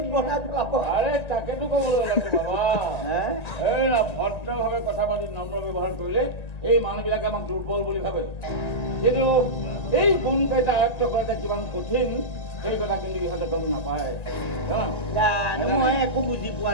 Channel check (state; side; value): late; right; 1.9 ms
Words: বনাই পেলাব আৰে তাকেতো ক'বলৈ ওলাইছো বাবা হে? এই ভদ্ৰভাৱে কথা পাতি নম্ৰ ব্যৱহাৰ কৰিলে এই মানুহবিলাকে আমাক দুৰ্বল বুলি ভাবে কিন্তু এই গুণকেইটা আয়ত্ব কৰাটো কিমান কঠিন সেই কথা কিন্তু ইহঁতে গম নাপায় জানো, মই একো বুজি পোৱা